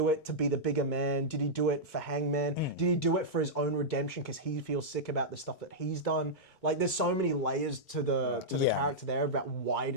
it to be the bigger man? Did he do it for Hangman? Did he do it for his own redemption because he feels sick about the stuff that he's done? Like, there's so many layers to the character there about why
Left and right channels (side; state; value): right; late; 4.4 ms